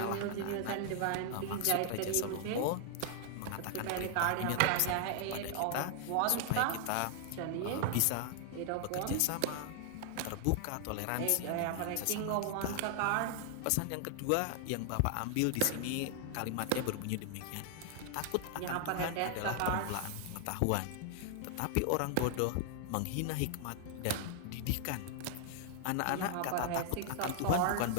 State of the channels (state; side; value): different; both; correlation 0.00